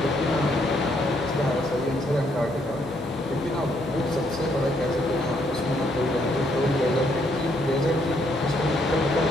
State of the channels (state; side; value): normal; both; correlation 0.72